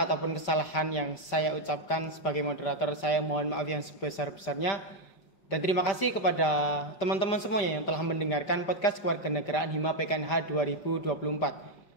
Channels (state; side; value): late; right; 5.1 ms